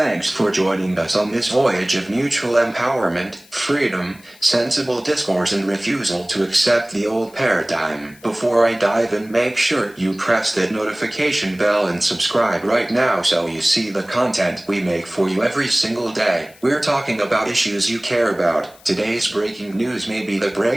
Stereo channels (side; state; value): left; noise; hiss, 26 dB below the sound